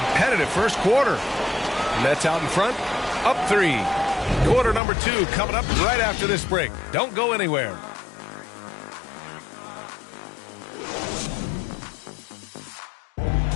first quarter. Nets out in front, up 3. Quarter number 2 coming up right after this break. Don't go anywhere.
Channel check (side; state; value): right; drops out; at 4.8 s